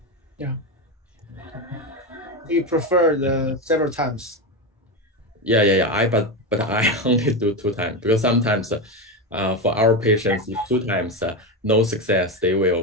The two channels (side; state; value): both; normal; correlation 0.15